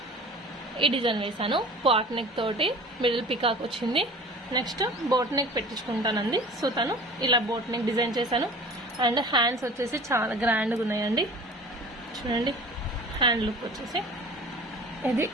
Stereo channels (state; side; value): normal; both; correlation 0.41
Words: ఈ డిజైన్ వేసాను. పాట్ నెక్ తోటి మిడిల్ పికాక్ వచ్చింది. నెక్స్ట్ బోట్ నెక్ పెట్టించుకుంటానండి. సో తను ఇలా బోట్ నెక్ డిజైన్ చేశాను. అండ్ హ్యాండ్స్ వచ్చేసి చాలా గ్రాండ్గా ఉన్నాయండి. చూడండి, హ్యాండ్ లుక్ వచ్చేసి ఇది